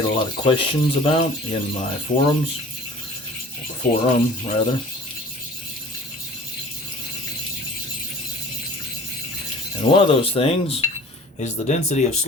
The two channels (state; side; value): normal; both; correlation 0.45